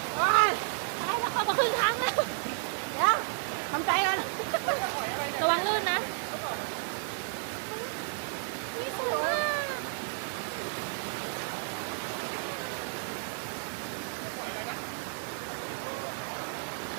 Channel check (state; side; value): silent; left; digital silence